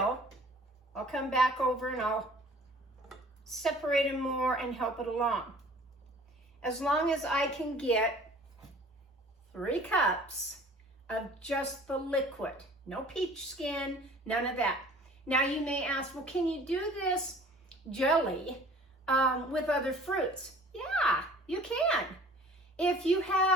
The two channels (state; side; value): normal; both; correlation 0.49